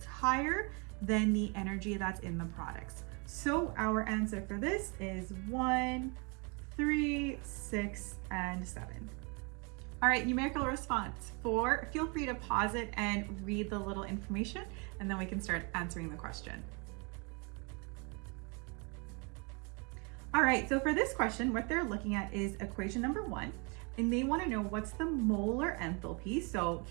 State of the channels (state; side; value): quieter; left; 32.4 dB